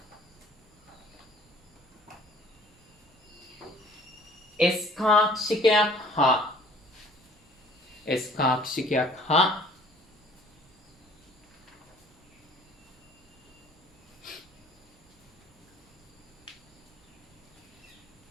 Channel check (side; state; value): both; normal; correlation 0.54